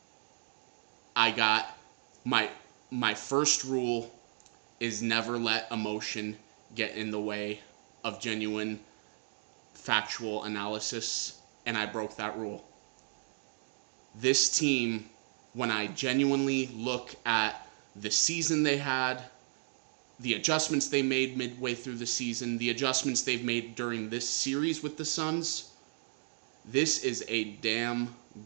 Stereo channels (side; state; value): left; silent; digital silence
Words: I got my first rule is never let emotion get in the way of genuine factual analysis, and I broke that rule. This team, when I genuinely look at the season they had, the adjustments they made midway through the season, the adjustments they've made during this series with the Suns, this is a damn